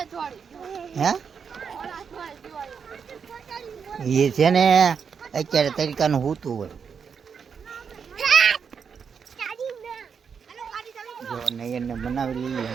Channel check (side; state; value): left; quieter; 6.5 dB